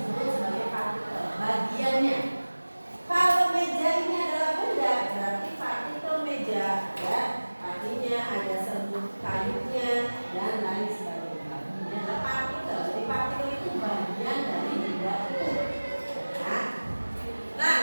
sebagai partikel. Bagiannya. Kalau meja ini adalah benda, berarti partikel meja, ya. Artinya ada serbuk kayunya dan lain sebagainya. Ini adalah partikel. Jadi partikel itu bagian dari benda itu. Nah,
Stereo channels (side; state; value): both; inverted; correlation -1.00